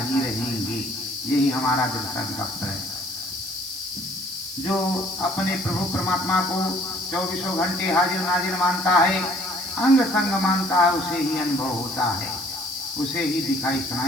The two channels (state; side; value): noise; right; hiss, 11 dB below the sound